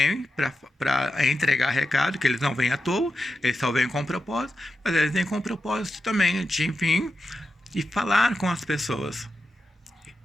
para entregar recado, que eles não vêm à toa, eles só vêm com propósito, mas eles vêm com propósito também de vir e falar com as pessoas.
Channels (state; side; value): normal; both; correlation 0.89